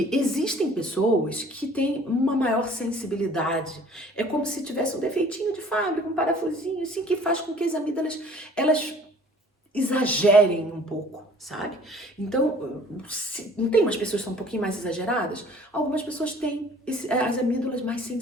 existem pessoas que têm uma maior sensibilidade. É como se tivesse um defeitinho de fábrica, um parafusinho, assim, que faz com que as amígdalas, elas exagerem um pouco, sabe? Então, não tem umas pessoas que são um pouquinho mais exageradas? Algumas pessoas têm as amígdalas mais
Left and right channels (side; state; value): both; normal; correlation 0.52